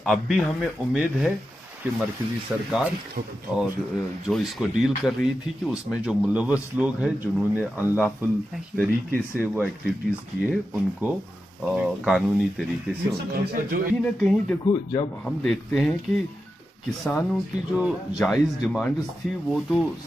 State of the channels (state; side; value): normal; both; correlation 0.90